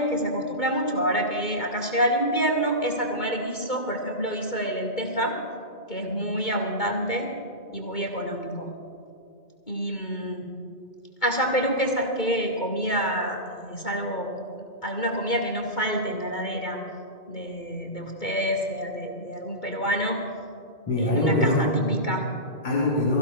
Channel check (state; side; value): late; right; 2.2 ms